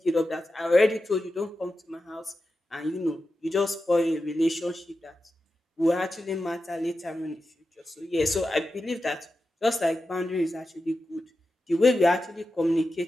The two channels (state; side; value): normal; both; correlation 0.91